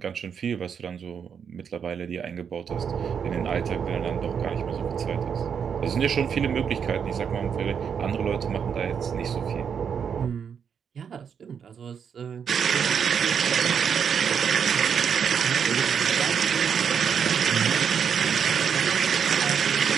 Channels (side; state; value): left; quieter; 7.2 dB